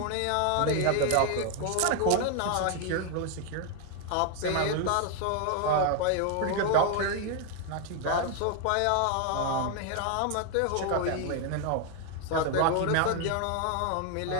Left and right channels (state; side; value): different; both; correlation 0.01